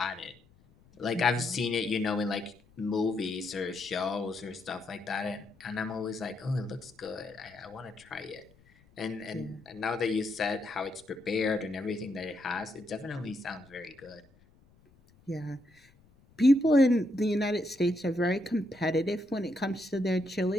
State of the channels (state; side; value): noise; left; rumble, 29 dB below the sound